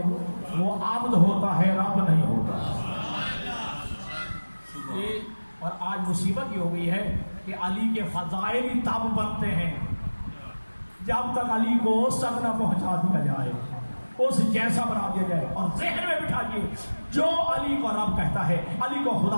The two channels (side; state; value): both; inverted; correlation -1.00